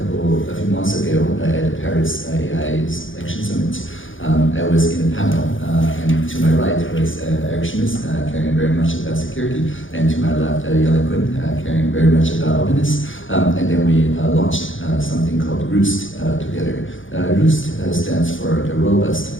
a few months ago at the Paris AI Action Summit, I was in a panel, and to my right was Eric Schmitz, caring very much about security, and to my left, Yale Quinn, caring very much about openness. And then we launched something called Roost together. Roost stands for the Robust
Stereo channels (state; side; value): late; right; 0.57 ms